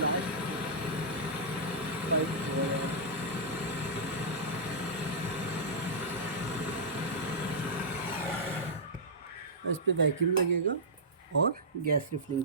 पाइप हो गया। इस पे वैक्यूम लगेगा और गैस रिफिलिंग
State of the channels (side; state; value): both; normal; correlation -0.12